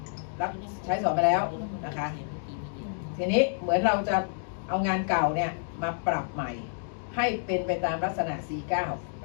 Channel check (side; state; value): right; silent; digital silence